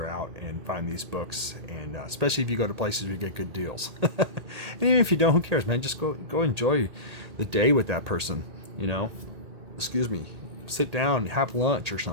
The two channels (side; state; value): left; late; 1.8 ms